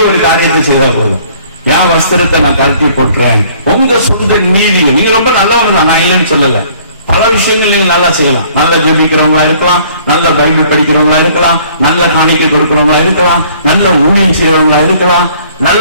ஒரு காரியத்தை செய்தா போதும். என் வஸ்திரத்தை நான் கழட்டி போட்டுறேன். உங்க சொந்த நீதி, நீங்க ரொம்ப நல்லவங்க தான், நான் இல்லைன்னு சொல்லல. பல விஷயங்கள் நீங்க நல்லா செய்யலாம். நல்ல ஜெபிக்கிறவங்களா இருக்கலாம், நல்ல பைபிள் படிக்கிறவங்களா இருக்கலாம், நல்ல காணிக்கை கொடுக்கிறவங்களா இருக்கலாம், நல்ல ஊழியம் செய்யறவங்களா இருக்கலாம்,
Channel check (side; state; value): both; inverted; correlation -0.57